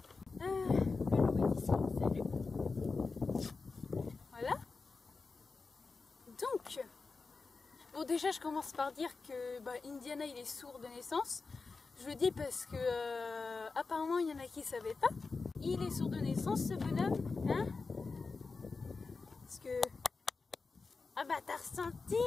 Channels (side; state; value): right; quieter; 4.3 dB